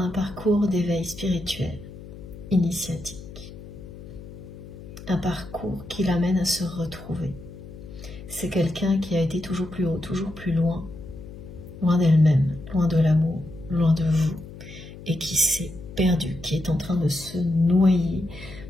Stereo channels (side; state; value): left; noise; hum, 15 dB below the sound